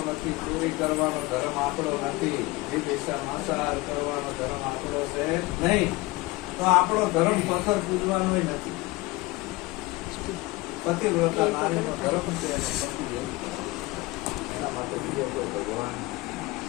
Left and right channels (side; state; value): right; quieter; 21.6 dB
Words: નથી, ચોરી કરવાનો ધર્મ આપણો નથી, વિદેશા માંસાહાર કરવાનો ધર્મ આપણો છે નહીં. તો આપણો ધર્મ પથ્થર પૂજવાનો નથી. પતિવ્રતા નારીનો ધર્મ છે, એના માટે ભગવાન